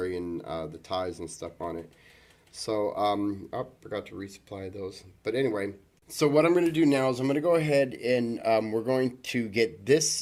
the ties and stuff on it. So, oh, forgot to resupply those. But anyway, so what I'm going to do now is I'm going to go ahead and we're going to get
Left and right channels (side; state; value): both; identical; correlation 1.00